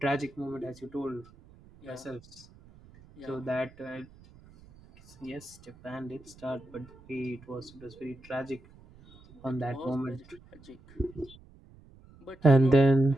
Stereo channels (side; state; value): right; noise; rumble, 24 dB below the sound